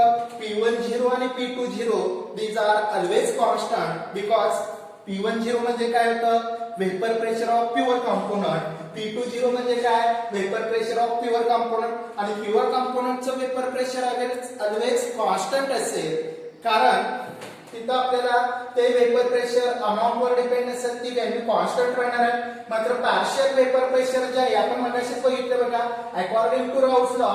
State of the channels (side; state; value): both; identical; correlation 1.00